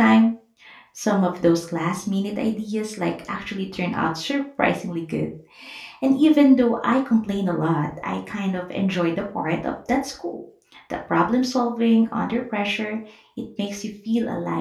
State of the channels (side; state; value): both; identical; correlation 1.00